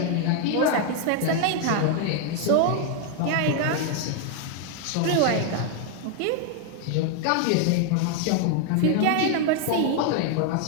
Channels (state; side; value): different; both; correlation 0.00